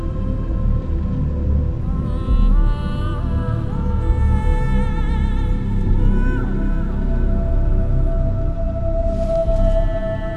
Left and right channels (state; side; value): identical; both; correlation 1.00